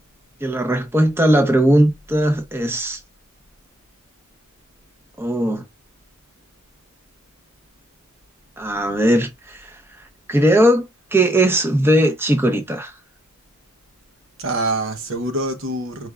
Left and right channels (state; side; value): normal; both; correlation 0.75